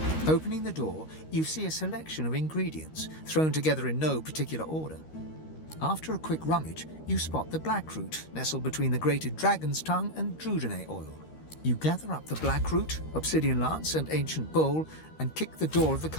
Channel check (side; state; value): right; late; 13 ms